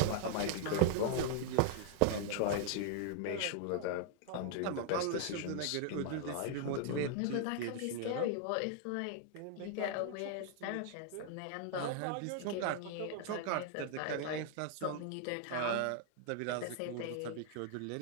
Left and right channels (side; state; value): both; different; correlation 0.00